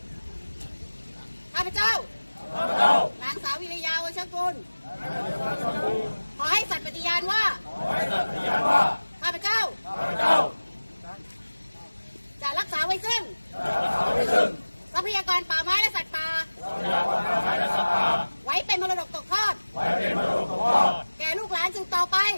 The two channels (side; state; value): both; inverted; correlation -1.00